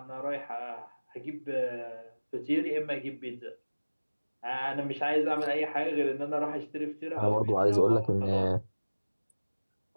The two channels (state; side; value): inverted; both; correlation -1.00